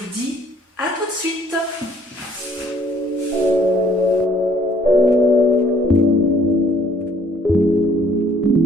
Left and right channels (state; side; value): normal; both; correlation 0.61